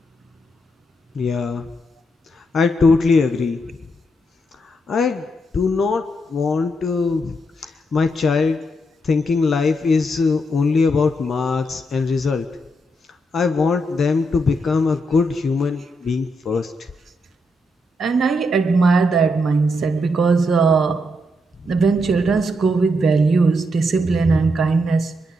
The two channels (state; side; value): normal; both; correlation 0.80